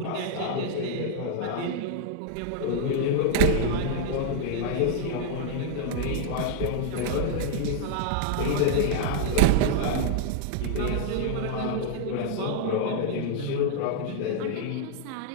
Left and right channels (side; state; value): both; different; correlation -0.01